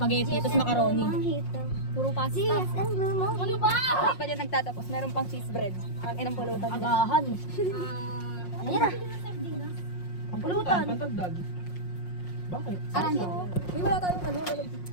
tapos macaroni. Mojito. Puro pasta. GSM Blue Mojito. Ano ba? Pa dyan nagtatapos. Meron pang cheese bread. Ang inang pulutan. Agahan. Ayan na. Ang pulutan. Pantagdag. Bakit? Arando. Uy, wala tayong ano.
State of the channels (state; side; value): late; right; 5.6 ms